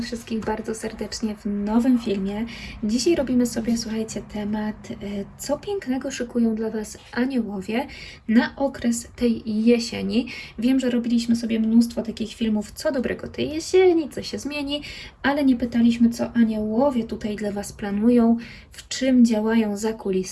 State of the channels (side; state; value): both; identical; correlation 1.00